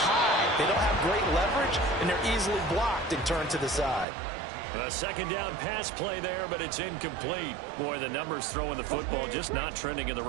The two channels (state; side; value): drops out; left; at 4.0 s